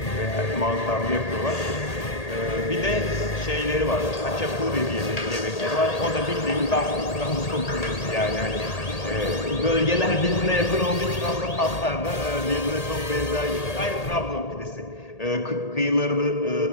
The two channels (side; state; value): right; late; 1.8 ms